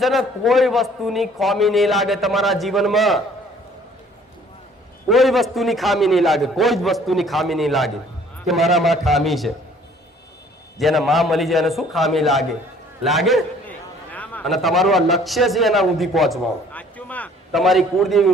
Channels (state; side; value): normal; both; correlation 0.56